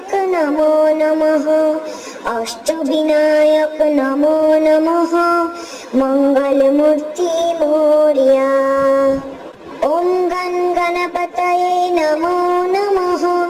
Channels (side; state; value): both; identical; correlation 1.00